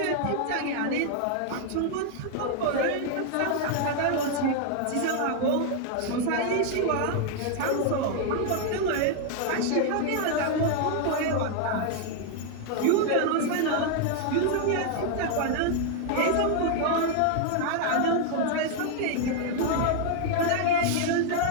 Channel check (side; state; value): both; different; correlation 0.00